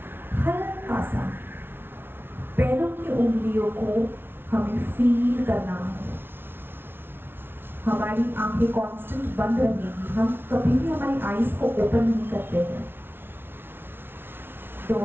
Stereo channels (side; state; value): left; late; 0.11 ms